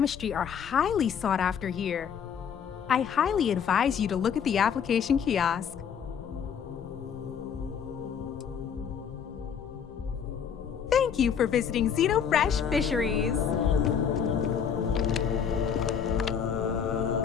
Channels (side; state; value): right; quieter; 7.5 dB